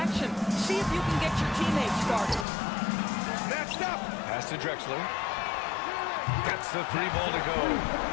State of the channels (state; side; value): drops out; right; at 2.5 s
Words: See if you can get your teammates started. Snatched up. Pass to Drexler. Gets the 3 ball to go.